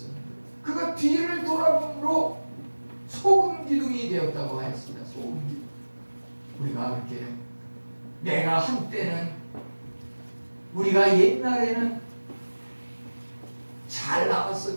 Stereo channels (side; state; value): both; inverted; correlation -1.00